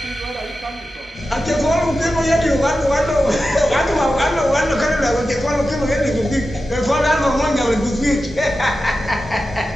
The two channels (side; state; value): both; normal; correlation 0.92